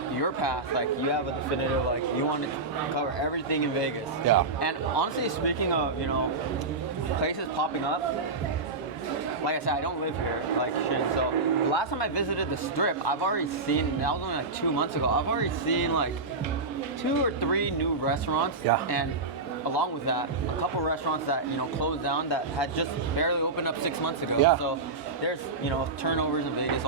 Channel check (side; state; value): left; quieter; 3.7 dB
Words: your path, like you have a definitive, like you want to cover everything in Vegas. Yeah. And honestly, speaking of, you know, places popping up, like I said, I don't live here, like Shin. So the last time I visited the Strip, I've already seen, that was only like 2 months ago, I've already seen like 2 or 3 new restaurants. Yeah. And along with that, a couple restaurants that, you know, closed down that had just barely opened up 6 months ago. Yeah. So there's, you know, turnovers in Vegas